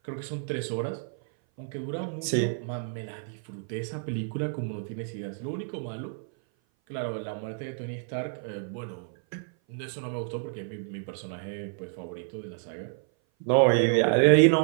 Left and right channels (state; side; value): silent; left; 56 dB below the other